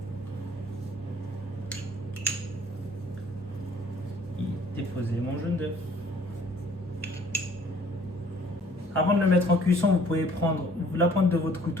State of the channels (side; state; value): both; normal; correlation 0.57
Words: y déposer mon jaune d'œuf. Avant de le mettre en cuisson, vous pouvez prendre la pointe de votre